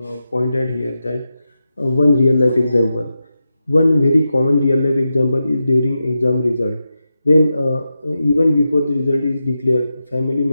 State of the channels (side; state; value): both; inverted; correlation -0.90